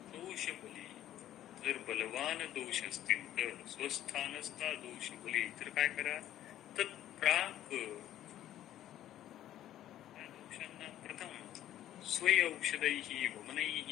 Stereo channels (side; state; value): right; quieter; 12.5 dB